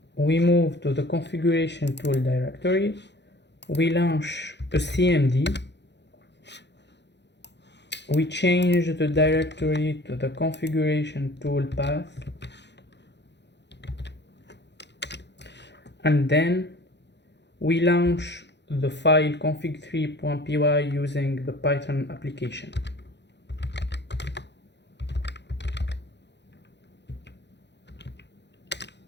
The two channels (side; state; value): right; late; 0.51 ms